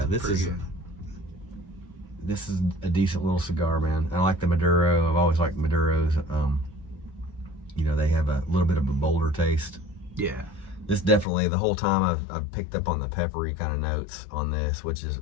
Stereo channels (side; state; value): right; drops out; at 11.2 s